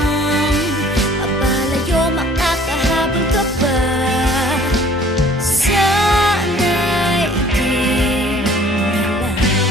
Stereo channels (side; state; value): both; normal; correlation 0.53